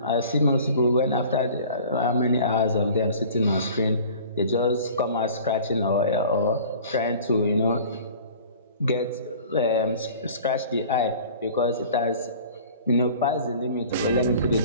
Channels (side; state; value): both; inverted; correlation -0.45